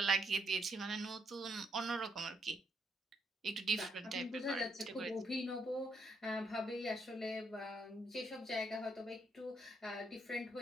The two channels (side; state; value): both; normal; correlation 0.74